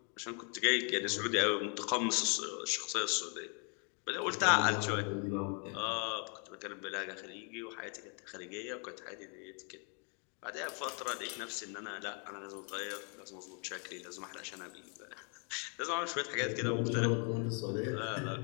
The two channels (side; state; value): right; quieter; 38.8 dB